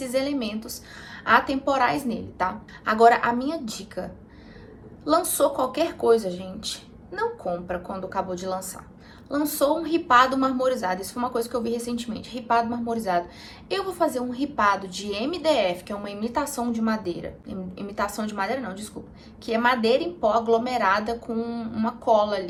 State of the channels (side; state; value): both; identical; correlation 1.00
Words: elementos atemporais nele, tá? Agora, a minha dica, lançou qualquer coisa, gente, não compra quando acabou de lançar. Lançou um ripado marmorizado, isso foi uma coisa que eu vi recentemente, ripado marmorizado. Eu vou fazer um ripado de MDF, que é uma imitação de madeira, imitação de madeira não, desculpa, que é madeira em pó aglomerada com uma cola